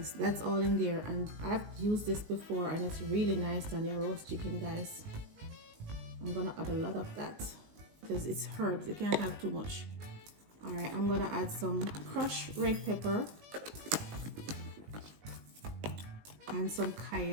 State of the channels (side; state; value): left; late; 19 ms